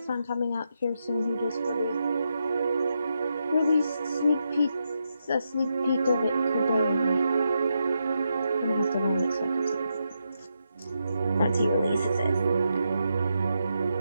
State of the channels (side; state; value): both; inverted; correlation -0.84